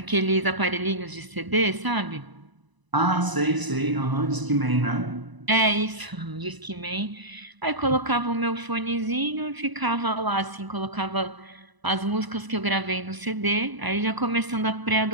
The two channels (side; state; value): left; late; 1.0 ms